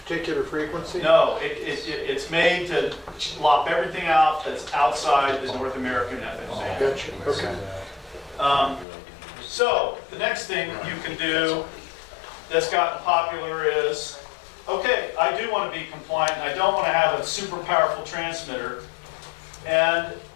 frequency? No, it's made to lop everything out that's outside the North American FM band. Gotcha, okay. So, the next thing you can do that's gotten popular is, okay, I do want to be compliant, and I don't want to have a super powerful transmitter. And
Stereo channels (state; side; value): drops out; right; at 8.8 s